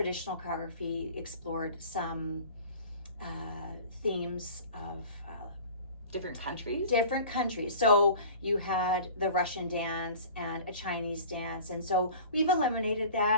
choreography explored some themes of different countries. Different countries. So you had the Russian dance and a Chinese dance, and so we've eliminated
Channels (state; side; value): inverted; both; correlation -0.41